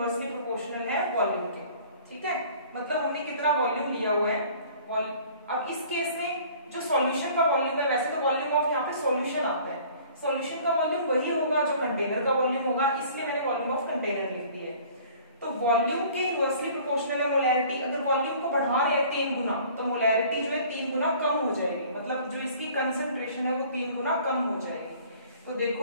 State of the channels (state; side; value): inverted; both; correlation -0.51